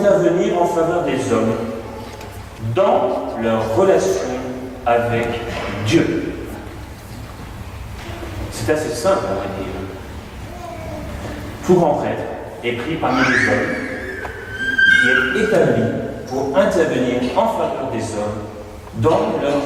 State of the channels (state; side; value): identical; both; correlation 1.00